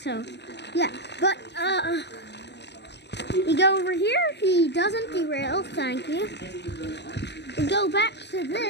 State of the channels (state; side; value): late; right; 0.50 ms